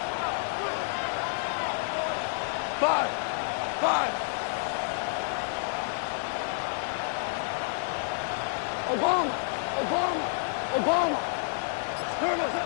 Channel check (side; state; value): right; silent; digital silence